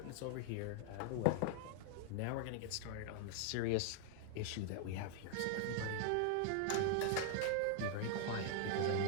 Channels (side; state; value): both; different; correlation 0.00